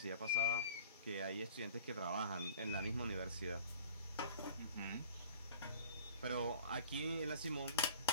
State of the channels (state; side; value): inverted; both; correlation -0.45